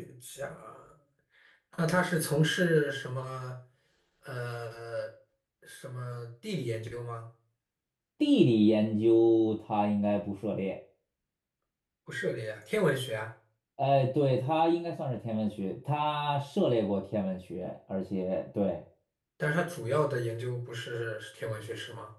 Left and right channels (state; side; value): identical; both; correlation 1.00